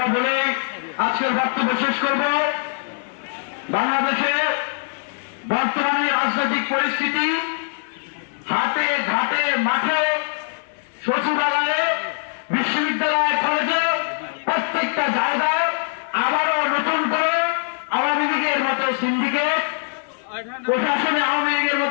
বলে আজকের বক্তব্য শেষ করব। বাংলাদেশে বর্তমানে রাজনৈতিক পরিস্থিতি হাটে ঘাটে মাঠে সচিবালয়ে বিশ্ববিদ্যালয় কলেজে প্রত্যেকটা জায়গায় আবারও নতুন করে আওয়ামী লীগের মতো সিন্ডিকেট, প্রশাসনে আওয়ামী লীগের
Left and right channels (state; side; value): silent; right; digital silence